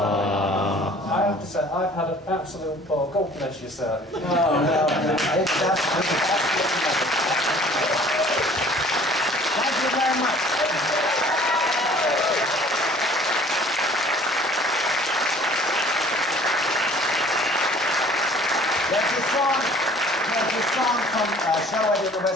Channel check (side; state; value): both; normal; correlation 0.51